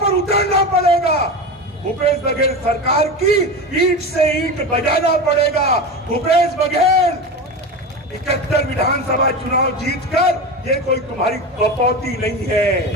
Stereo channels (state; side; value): normal; both; correlation 0.24